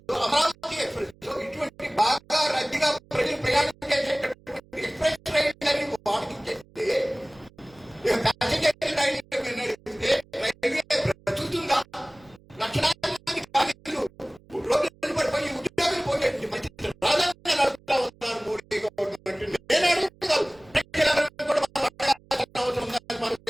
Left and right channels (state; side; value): noise; right; hum, 27 dB below the sound